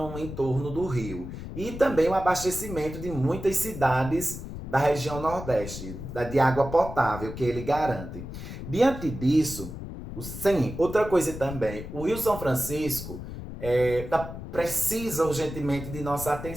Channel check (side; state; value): left; noise; rumble, 9 dB below the sound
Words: em torno do rio. E também o abastecimento de muitas cidades da região Nordeste, de água potável que ele garante. Diante disso, sim, outra coisa também, o Rio São Francisco precisa urgentemente de nossa